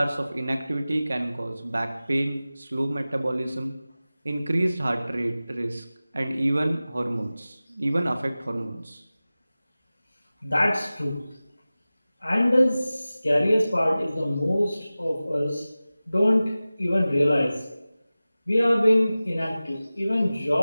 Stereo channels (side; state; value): both; inverted; correlation -0.97